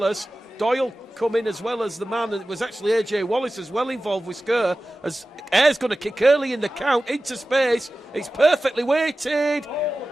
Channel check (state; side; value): normal; both; correlation 0.95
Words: Doyle come in as well as the man. It was actually AJ Wallace as well involved with Skur. As Ayre's going to kick early in the count into space. It's perfectly weighted.